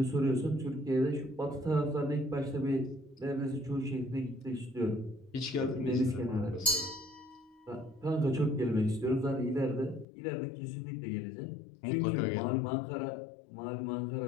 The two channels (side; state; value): right; drops out; at 10.1 s